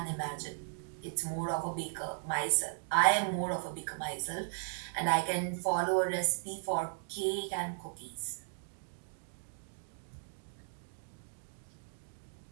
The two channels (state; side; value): silent; left; digital silence